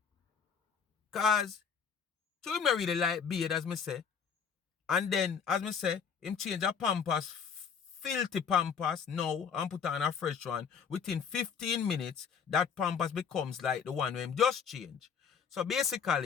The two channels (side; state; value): right; quieter; 6.7 dB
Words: Cause so him not really like beard as me say. And then as me say, him change a pampers, filthy pampers now and put on a fresh one. Within 15 minutes, that pampers becomes like the one where him just change. So